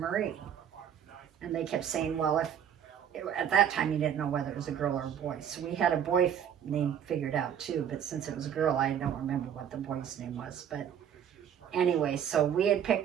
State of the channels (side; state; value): left; quieter; 8.9 dB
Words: And they kept saying, well, at that time you didn't know whether it was a girl or a boy. So we had a boy name figured out too, but since it was a girl, I don't remember what the boy's name was. But anyway, so we had